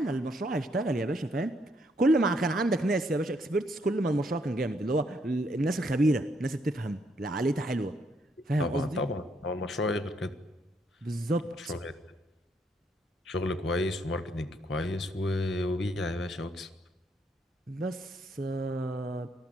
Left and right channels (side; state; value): both; normal; correlation 0.72